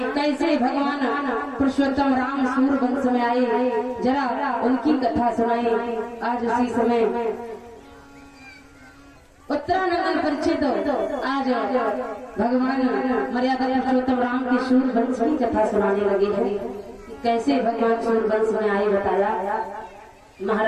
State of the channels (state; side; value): identical; both; correlation 1.00